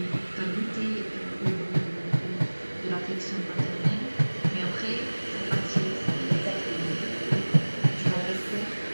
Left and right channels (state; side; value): inverted; both; correlation -1.00